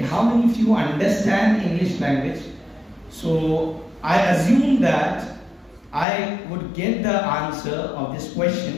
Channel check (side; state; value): right; drops out; at 6.1 s